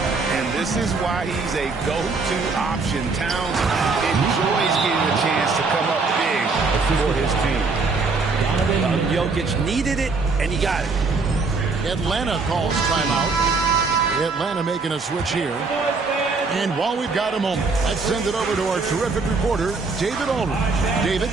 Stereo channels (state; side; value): quieter; left; 4.2 dB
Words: And this is why he's a go-to option. Towns enjoys getting a chance to come up big for his team. Jokic needed it, and he got it. Atlanta calls timeout. Atlanta making a switch here. And while we've got a moment, let's send it over to our terrific reporter, David Aldridge. David?